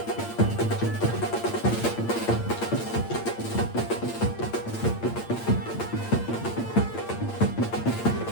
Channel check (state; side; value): late; right; 8.7 ms